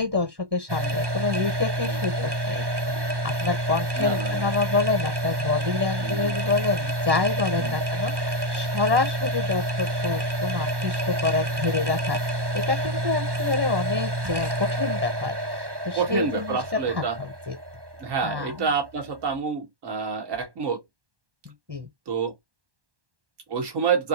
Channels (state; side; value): late; left; 1.1 ms